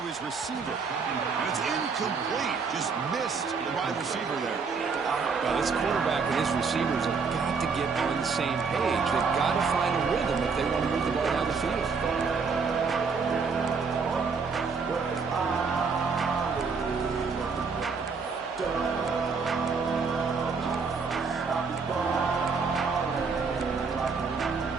his receiver. And it's incomplete. Just missed the wide receiver there. Well, this quarterback and his receivers have got to get on the same page. They've got to find a rhythm if they want to move the ball down the field.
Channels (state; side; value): quieter; left; 5.1 dB